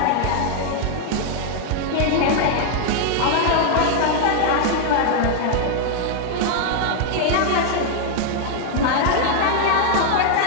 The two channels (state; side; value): different; both; correlation 0.00